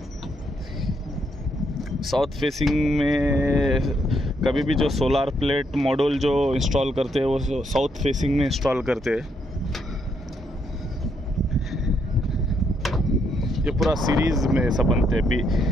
साउथ फेसिंग में कभी भी जो सोलार प्लेट मॉड्यूल जो इंस्टॉल करते हैं वो साउथ फेसिंग में इंस्टॉल करते हैं। ये पूरा सीरीज़ में सब बनते हैं।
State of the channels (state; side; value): normal; both; correlation 0.75